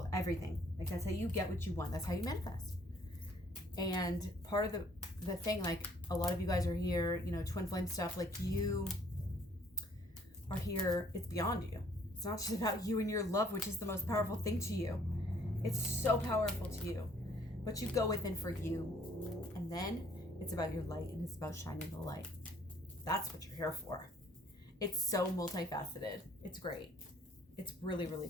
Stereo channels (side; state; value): both; normal; correlation 0.61